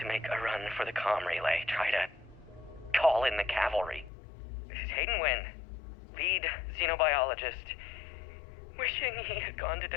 make a run for the comm relay. Try to call in the cavalry. This is Hayden Wynn, lead xenobiologist. Wishing he had gone to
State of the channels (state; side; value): drops out; right; at 4.1 s